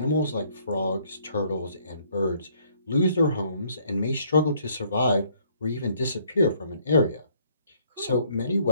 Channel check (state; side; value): inverted; both; correlation -0.65